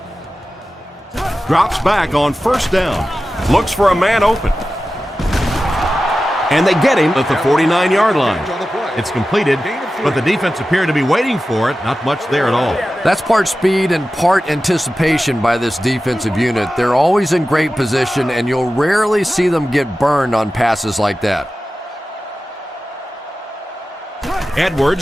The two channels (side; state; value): both; normal; correlation 0.94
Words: Drops back on first down. Looks for a man open. And they get him at the 49-yard line. It's completed, but the defense appeared to be waiting for it. Not much there at all. That's part speed and part anticipation by this defensive unit. They're always in great position, and you'll rarely see them get burned on passes like that.